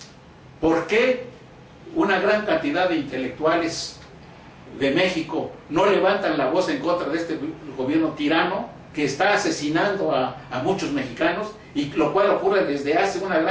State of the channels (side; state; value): both; identical; correlation 1.00